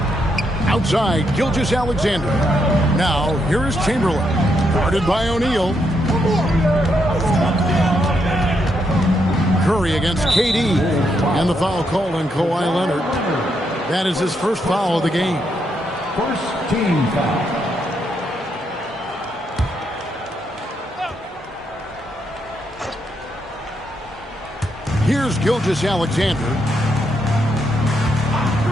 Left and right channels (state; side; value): normal; both; correlation 0.78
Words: Outside, Gilgeous-Alexander. Now, here is Chamberlain. Guarded by O'Neal. Curry against KD. And the foul called on Kawhi Leonard. That is his first foul of the game. First team foul. Here's Gilgeous-Alexander.